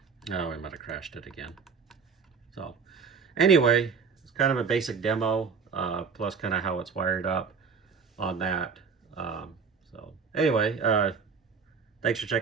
Oh, we might have crashed it again. So anyway, it's kind of a basic demo, plus kind of how it's wired up on that. So anyway, thanks for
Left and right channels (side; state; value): left; quieter; 5.6 dB